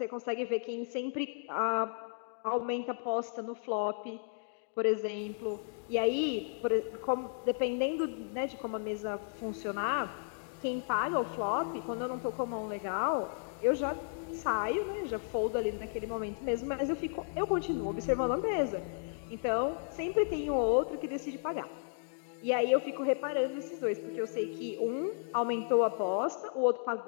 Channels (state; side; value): silent; right; digital silence